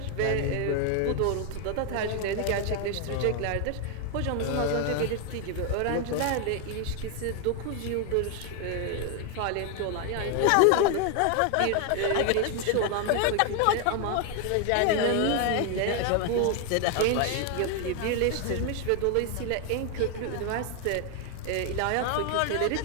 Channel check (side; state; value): both; different; correlation 0.01